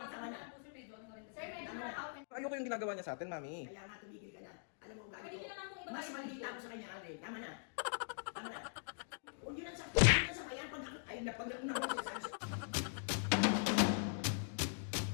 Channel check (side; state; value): right; silent; digital silence